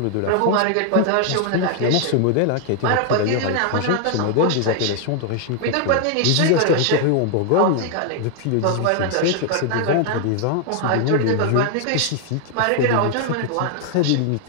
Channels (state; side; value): different; both; correlation 0.00